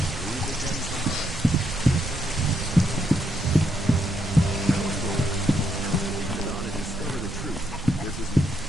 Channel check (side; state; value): right; noise; rumble, 9 dB below the sound